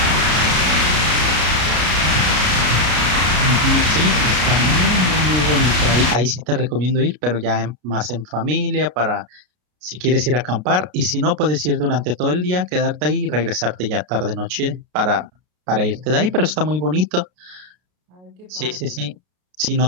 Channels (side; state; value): left; late; 33 ms